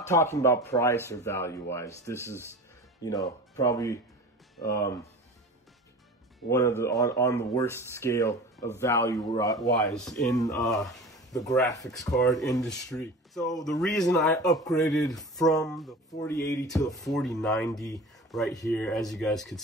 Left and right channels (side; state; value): both; normal; correlation 0.36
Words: talking about price or value wise. This is, you know, probably one of the on the worst scale of value wise in the graphics card industry. So the reason I upgraded from the 4080 to the 4090 right here, as you guys could